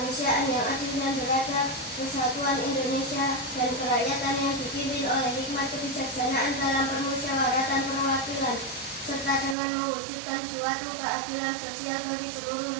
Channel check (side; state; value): left; drops out; at 9.6 s